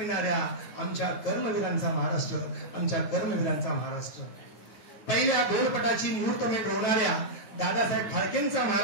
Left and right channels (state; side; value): late; right; 9.2 ms